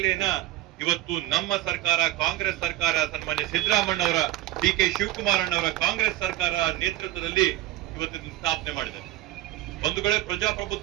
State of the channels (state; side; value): quieter; left; 15.5 dB